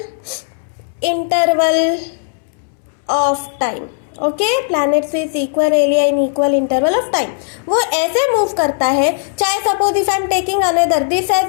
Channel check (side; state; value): right; silent; 68 dB below the other